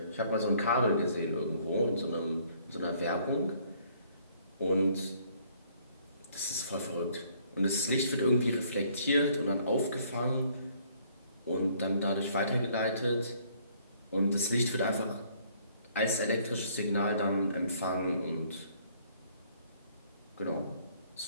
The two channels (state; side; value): inverted; both; correlation -0.63